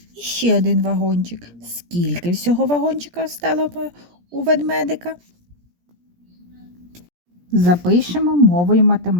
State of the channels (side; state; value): left; late; 17 ms